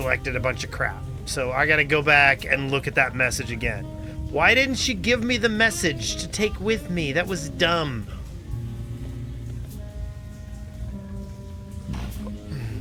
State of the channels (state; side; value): identical; both; correlation 1.00